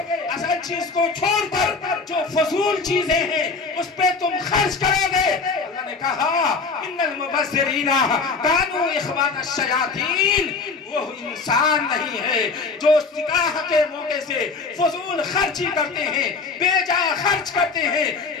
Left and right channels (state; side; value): quieter; right; 4.4 dB